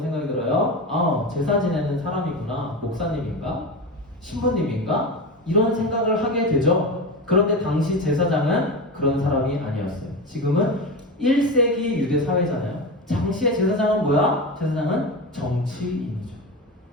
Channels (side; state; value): both; normal; correlation 0.22